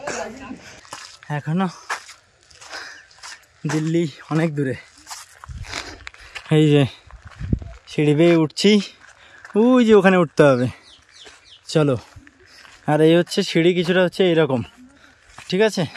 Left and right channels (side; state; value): both; identical; correlation 1.00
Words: এখনো দিল্লি অনেক দূরে। এই যে সিঁড়ি বেয়ে উঠছি, ওই যে ওখানে উঠতে হবে, চলো। আর এই হচ্ছে সিঁড়ি, কিছুটা হচ্ছে এইরকম, ঠিক আছে,